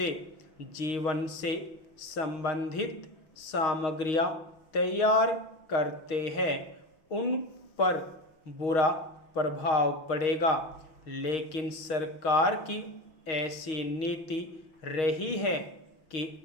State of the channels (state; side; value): late; right; 6.4 ms